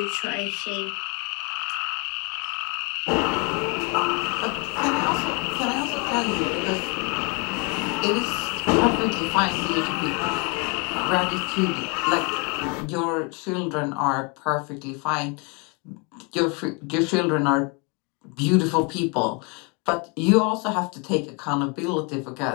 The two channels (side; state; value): right; quieter; 31.8 dB